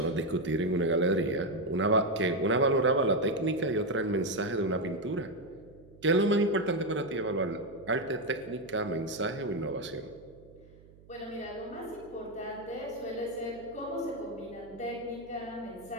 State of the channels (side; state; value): right; noise; hum, 24 dB below the sound